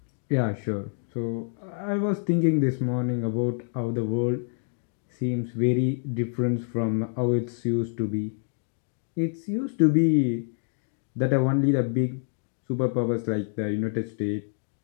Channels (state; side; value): silent; right; digital silence